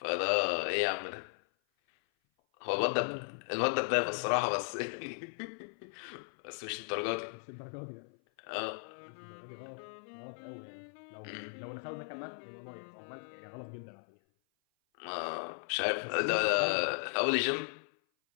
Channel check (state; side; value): silent; right; 54 dB below the other